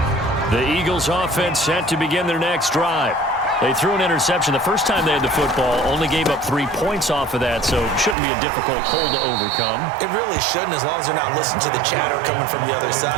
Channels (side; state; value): left; drops out; at 8.2 s